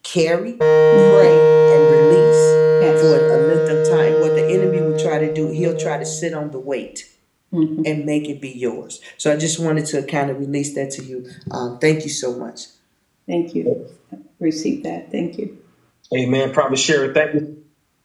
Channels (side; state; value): both; identical; correlation 1.00